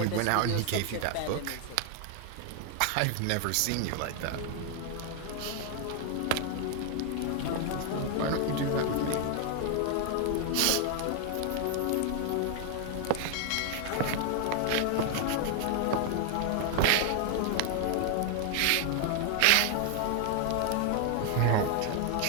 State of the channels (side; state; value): both; different; correlation 0.00